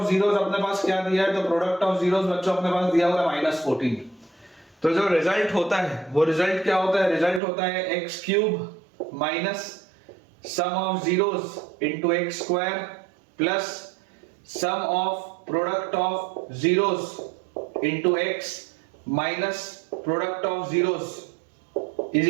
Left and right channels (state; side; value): drops out; left; at 7.4 s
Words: जीरोस अपने पास क्या दिया है. तो प्रोडक्ट ऑफ जीरोस बच्चों अपने पास दिया हुआ है -14. तो जो रिजल्ट होता है वो रिजल्ट क्या होता है. रिजल्ट होता है x³ minus sum of zeros into x² plus sum of product of zeros into x minus product of zeros is